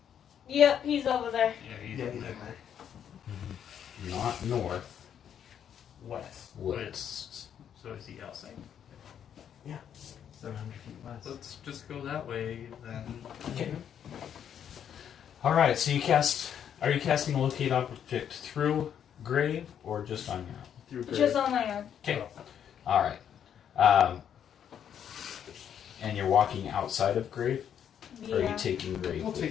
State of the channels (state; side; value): quieter; right; 8.9 dB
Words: Yep, he's over there. Yeah, he's Yeah, in he's there. in there. Not north, West. west. So is he outside? 700 feet west. Let's just go that way then. Okay. All right. So you cast. Are you casting a locate object through grave or just on your own? Through Just on my own. Okay. All right. And you're walking outside of grave. Or are you Yeah. taking grave? We'll with